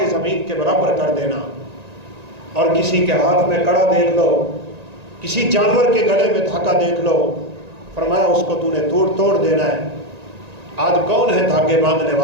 زمین کے برابر کر دینا، اور کسی کے ہاتھ میں کڑا دیکھ لو، کسی جانور کے گلے میں دھاگا دیکھ لو، فرمایا اس کو تو نے توڑ دینا ہے۔ آج کون ہے دھاگے باندھنے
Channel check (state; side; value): late; left; 1.9 ms